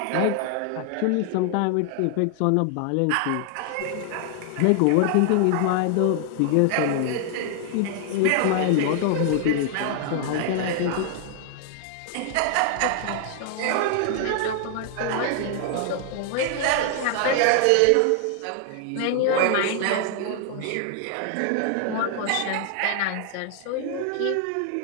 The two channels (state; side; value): different; both; correlation 0.00